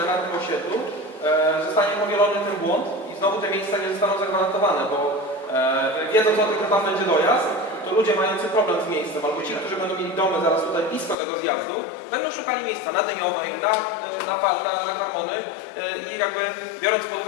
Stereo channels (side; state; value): right; drops out; at 11.2 s